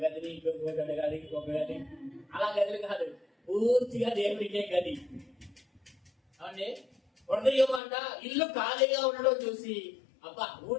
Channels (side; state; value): right; drops out; at 7.8 s